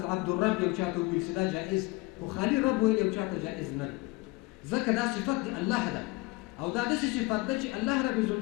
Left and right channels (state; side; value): quieter; right; 23.0 dB